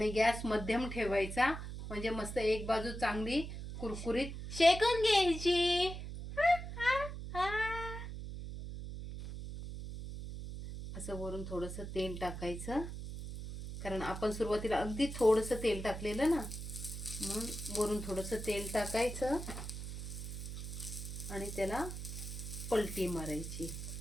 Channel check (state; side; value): noise; right; hum, 7 dB below the sound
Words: गॅस मध्यम ठेवायचा, म्हणजे मस्त एक बाजू चांगली कुरकुरीत शेकून घ्यायची. असं वरून थोडंसं तेल टाकायचं, कारण आपण सुरुवातीला अगदी थोडंसं तेल टाकलेलं ना, म्हणून वरून थोडंसं तेल टाकायचं आणि त्याला पलटी मारायची.